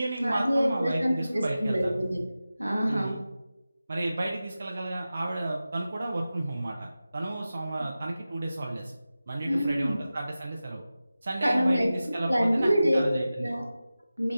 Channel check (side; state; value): both; inverted; correlation -0.95